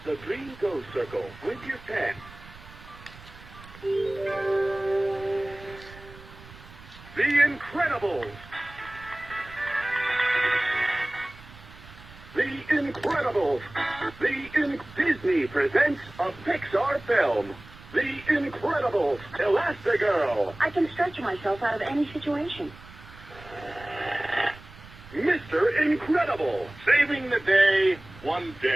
the green go circle with your pen. The Incredibles! The Incredibles! Disney presents a Pixar film. The Incredibles, Elastigirl. I can stretch myself out of any situation. Mr. Incredible, saving the day one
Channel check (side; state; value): right; noise; rumble, 19 dB below the sound